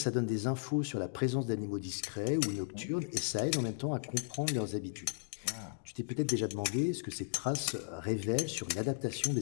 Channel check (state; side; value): silent; right; digital silence